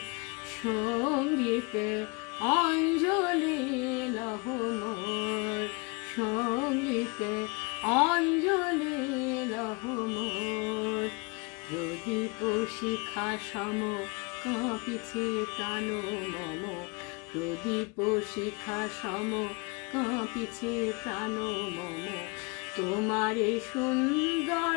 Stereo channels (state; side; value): quieter; right; 29.9 dB